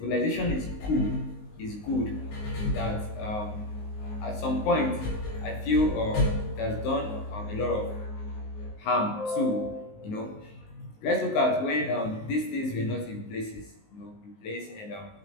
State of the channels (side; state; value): right; late; 19 ms